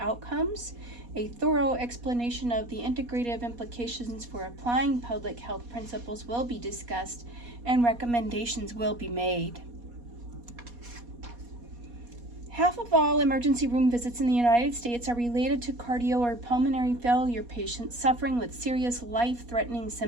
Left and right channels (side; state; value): left; late; 4.2 ms